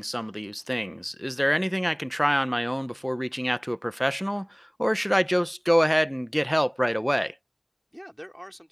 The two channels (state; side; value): identical; both; correlation 1.00